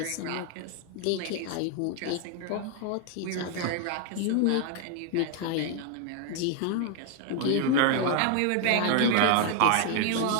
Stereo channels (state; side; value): different; both; correlation 0.00